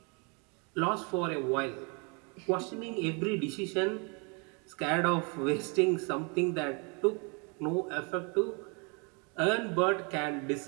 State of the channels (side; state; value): left; quieter; 33.6 dB